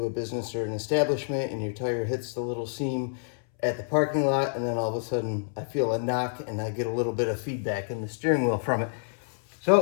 a business or an establishment, and your tire hits the little seam at the parking lot, and then all of a sudden I feel a knock and I get a little bit of feedback in the steering wheel from it.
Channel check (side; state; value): right; silent; 59 dB below the other